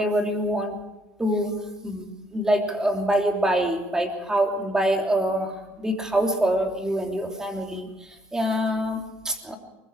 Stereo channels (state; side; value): normal; both; correlation 0.70